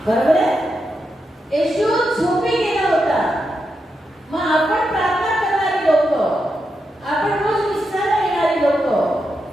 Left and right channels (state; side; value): normal; both; correlation 0.85